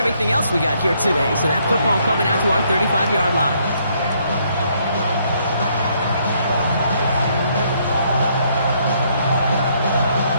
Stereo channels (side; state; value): both; inverted; correlation -0.69